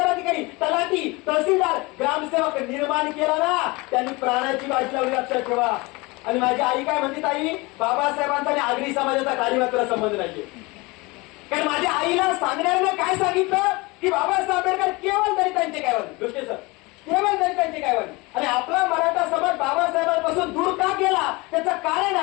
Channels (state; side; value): quieter; right; 24.5 dB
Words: अधिकारी, तलाठी, तहसीलदार, ग्रामसेवक निर्माण केला ना, त्यांनी प्राणाची बाजी लावली, लक्षात ठेवा. आणि माझी आई काय म्हणते, ताई बाबासाहेबांचा आणि आगरी समाजाचा काही मात्र संबंध नाहीये. कारण माझ्या आईला सांगण्यानं काय सांगितलं की बाबासाहेब आंबेडकर केवळ दलितांचे कैवारी, दृष्टी सर, केवळ दलितांचे कैवारी. आणि आपला मराठा समाज बाबासाहेबांपासून दूर का केला त्याचं कारण